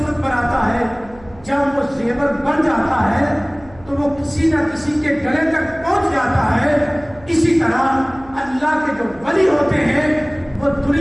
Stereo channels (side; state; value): right; noise; hum, 23 dB below the sound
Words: بناتا ہے۔ جب وہ زیور بن جاتا ہے تو وہ کسی نہ کسی کے گلے تک پہنچ جاتا ہے۔ اسی طرح اللہ کے جو ولی ہوتے ہیں وہ